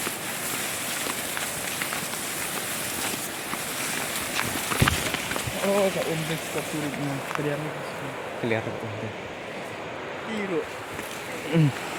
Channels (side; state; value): both; identical; correlation 1.00